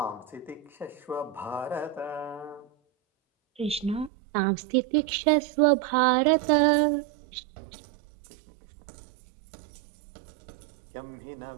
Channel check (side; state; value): left; drops out; at 4.1 s